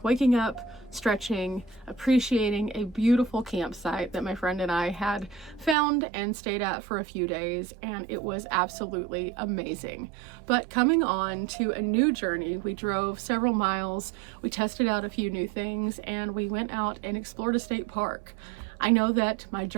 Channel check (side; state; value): left; drops out; at 5.8 s